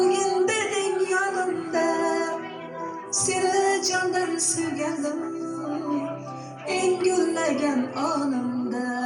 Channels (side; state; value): both; identical; correlation 1.00